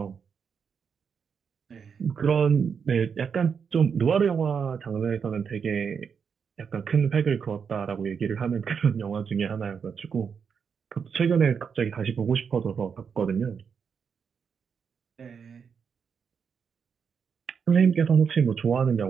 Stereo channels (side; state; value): left; quieter; 6.5 dB